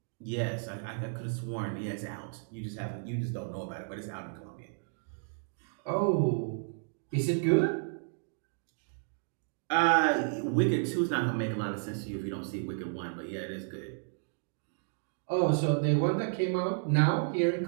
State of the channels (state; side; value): silent; left; digital silence